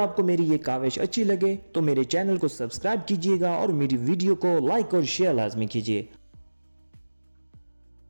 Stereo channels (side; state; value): both; inverted; correlation -1.00